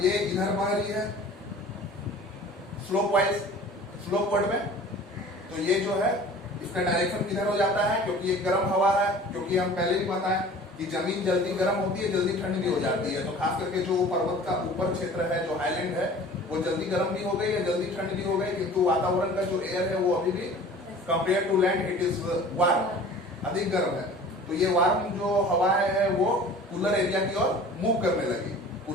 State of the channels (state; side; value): normal; both; correlation 0.44